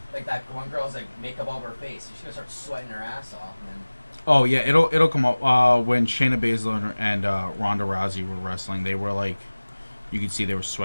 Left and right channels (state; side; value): inverted; both; correlation -1.00